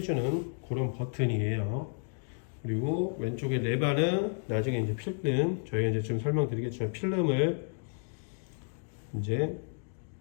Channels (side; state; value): right; silent; 55 dB below the other